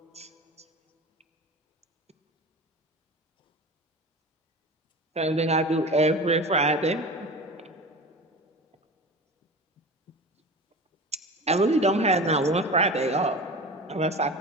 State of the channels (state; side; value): normal; both; correlation 0.33